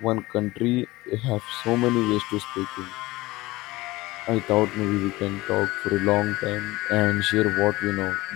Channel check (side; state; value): right; quieter; 20.0 dB